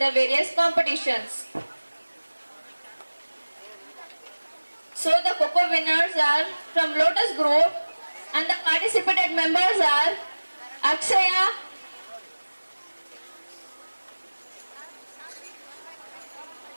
various competitions. So the Coco winners are from Lotus Group and the participated members are Akshaya,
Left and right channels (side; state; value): both; inverted; correlation -1.00